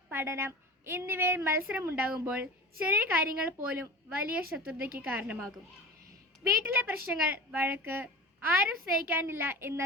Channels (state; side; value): normal; both; correlation 0.33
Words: പഠനം എന്നിവയിൽ മത്സരമുണ്ടാകുമ്പോൾ ചെറിയ കാര്യങ്ങൾ പോലും വലിയ ശത്രുതയ്ക്ക് കാരണമാകും. വീട്ടിലെ പ്രശ്നങ്ങൾ, വഴക്ക്, ആരും സ്നേഹിക്കാനില്ല എന്ന